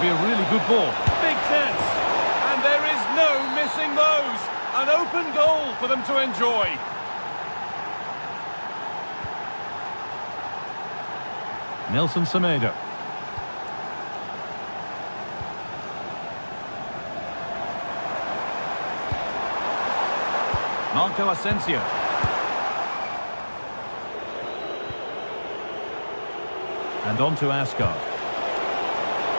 be a really good ball. Big chance. And there is no missing those. An open goal for them to enjoy. Nelson Semedo. Marco Asensio. And on to Asgard.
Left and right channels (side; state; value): both; inverted; correlation -1.00